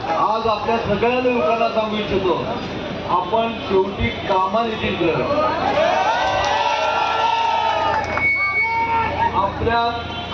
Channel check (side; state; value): both; identical; correlation 1.00